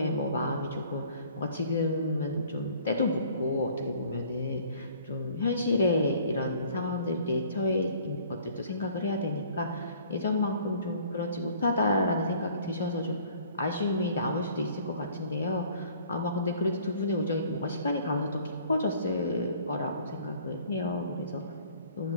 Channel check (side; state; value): both; inverted; correlation -0.54